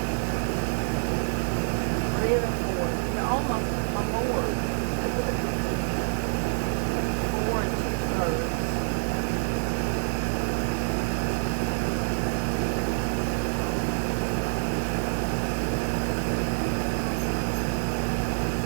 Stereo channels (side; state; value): left; silent; digital silence